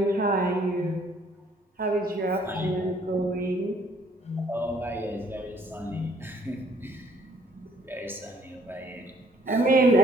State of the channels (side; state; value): both; normal; correlation 0.62